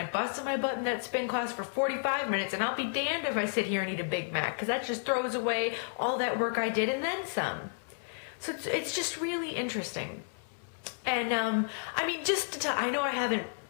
busted my butt in that spin class for 45 minutes, and I'll be damned if I sit here and eat a Big Mac, because that just throws away all that work I did and then some. So it's just really interesting. And I mean, I know I haven't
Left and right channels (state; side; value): silent; right; 57 dB below the other